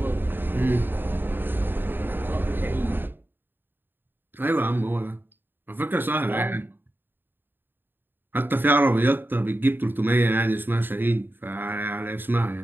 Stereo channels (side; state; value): left; late; 0.096 ms